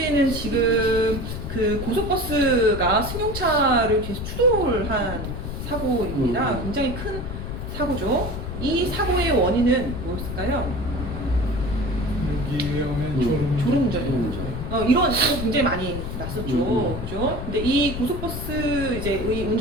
지금 그 고속버스가 승용차를 계속 추돌을 한 사고입니다. 굉장히 큰 사고죠. 이 사고의 원인은 무엇일까요? 여기에 오면 졸음운전이에요. 이런 사고 굉장히 많이 났었죠. 그죠? 근데 이 고속버스 이제 의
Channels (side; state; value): left; noise; rumble, 6 dB below the sound